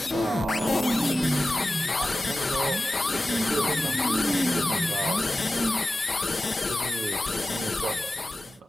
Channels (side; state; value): both; normal; correlation 0.94